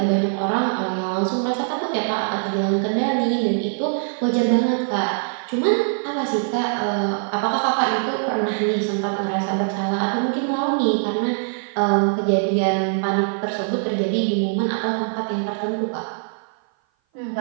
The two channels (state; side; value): silent; left; 57 dB below the other